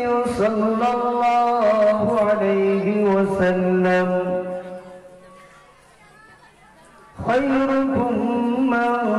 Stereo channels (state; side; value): identical; both; correlation 1.00